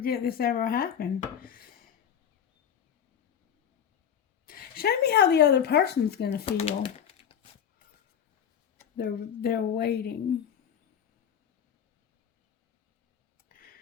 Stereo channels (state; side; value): quieter; right; 8.5 dB